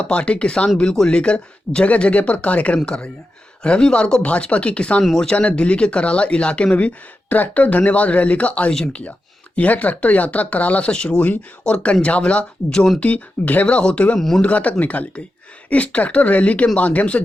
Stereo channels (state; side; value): normal; both; correlation 0.90